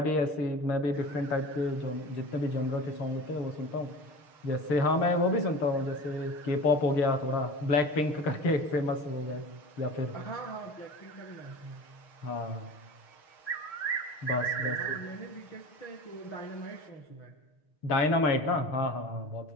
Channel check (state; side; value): late; right; 6.6 ms